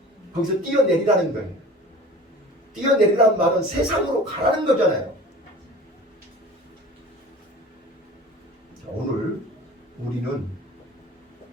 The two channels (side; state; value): both; normal; correlation 0.41